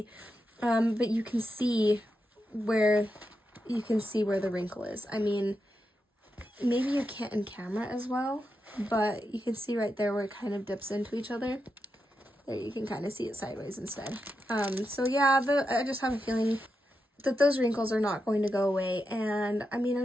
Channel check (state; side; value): normal; both; correlation 0.87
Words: But you can see where the wrinkle is. I mean, maybe you can't in camera as well, but you can see right there where it kind of dips into each other. There, you can kind of see it sideways instead. So yeah, I just have a feeling that those wrinkles are not going to go away, and I mean, I